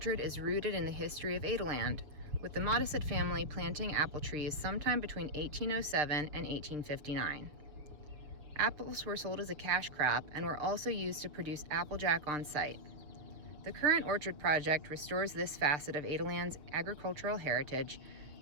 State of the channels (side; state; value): left; late; 7.0 ms